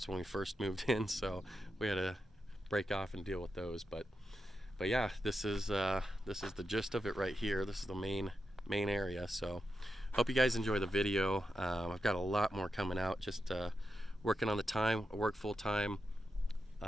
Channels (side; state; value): both; normal; correlation 0.87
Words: when we first moved in, so we had to break off and deal with those. But yeah, this is the gist of it right here. This is the main area. So hope you guys enjoy the video. I've got a lot more coming out. Just working on the time. I work full time.